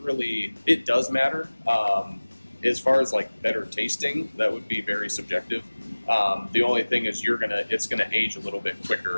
really. It does matter. As far as like better tasting, that would be very subjective. The only thing is it's gonna age a little bit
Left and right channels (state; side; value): inverted; both; correlation -1.00